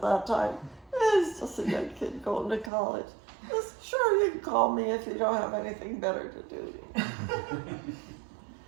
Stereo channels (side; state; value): left; drops out; at 2.7 s